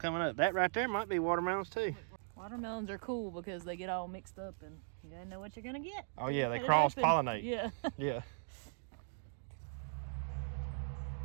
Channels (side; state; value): left; silent; digital silence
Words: up. That right there might be watermelons too. Watermelons are cool because they get all mixed up and you gotta know what you're gonna get. Oh yeah, they cross-pollinate. Yeah. Yeah.